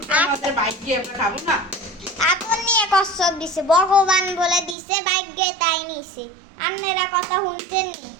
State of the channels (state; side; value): drops out; left; at 4.8 s